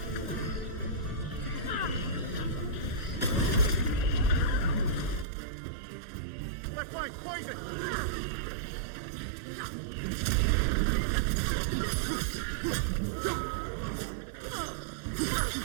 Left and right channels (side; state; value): left; drops out; at 5.2 s